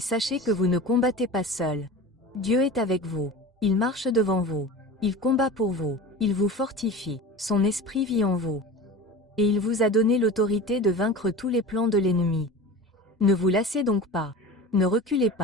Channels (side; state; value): both; normal; correlation 0.34